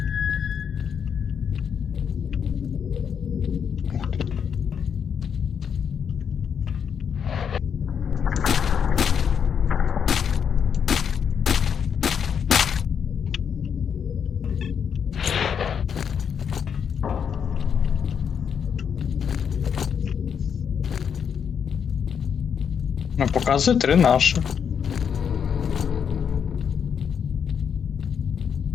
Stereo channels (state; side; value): quieter; right; 7.4 dB